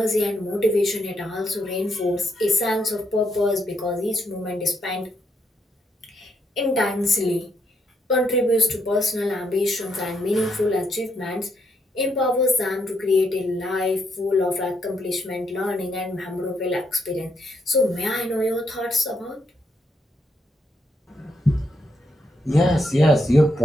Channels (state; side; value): normal; both; correlation 0.76